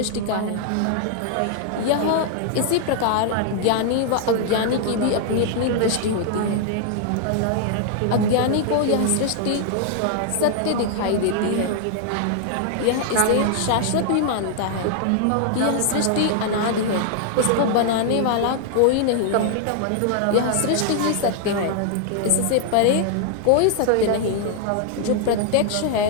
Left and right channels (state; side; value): different; both; correlation 0.00